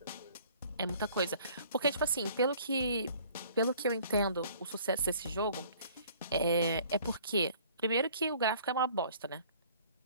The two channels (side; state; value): both; inverted; correlation -0.54